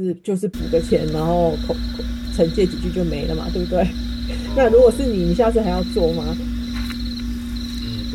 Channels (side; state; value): both; identical; correlation 1.00